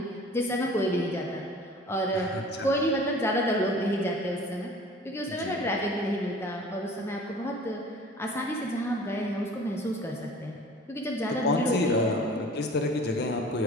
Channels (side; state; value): both; normal; correlation 0.46